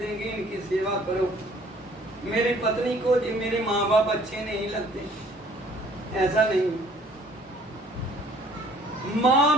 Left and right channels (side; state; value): both; normal; correlation 0.57